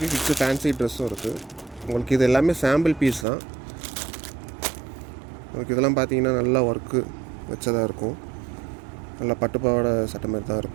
கிட்ஸு ஃபேன்சி ட்ரெஸ்ஸும் இருக்குது. உங்களுக்கு இது எல்லாமே சாம்பிள் பீஸ் தான். உங்களுக்கு இதெல்லாம் பார்த்தீங்கன்னா நல்லா ஒர்க்கு வச்சதாக இருக்கும். நல்லா பட்டு பாவாடை சட்டை மாதிரி தான்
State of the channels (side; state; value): left; drops out; at 3.2 s